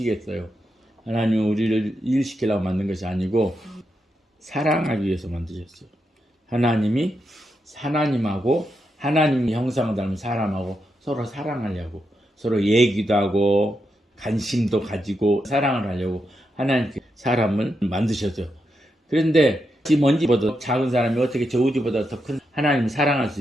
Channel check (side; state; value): both; normal; correlation 0.84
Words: 하나님은 우리를 일시키려고 만든 것이 아니고 사랑하기 위해서 만드셨어요. 하나님이 하나님하고 하나님 형상을 닮은 사람하고 서로 사랑하려고, 서로 얘기도 하고 관심도 가지고 사랑을 하려고 하나님께 사람을 만드셨어요. 그런데 이 먼지보다 작은 사람이 어떻게 저 우주보다 더 큰 하나님을 사랑할 수